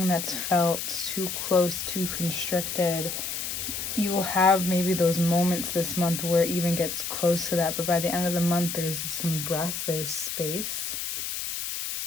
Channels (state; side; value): noise; left; hiss, 4 dB below the sound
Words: that's felt too close, too constricted, you will have maybe those moments this month where it even gets close to that, but by the end of the month there's some breath, there's space.